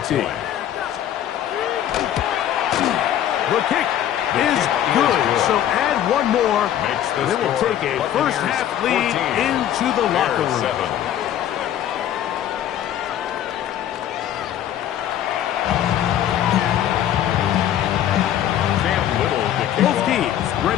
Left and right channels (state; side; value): quieter; right; 11.1 dB